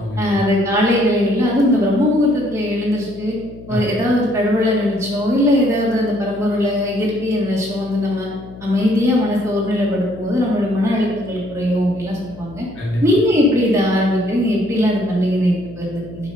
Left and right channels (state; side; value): noise; left; hum, 17 dB below the sound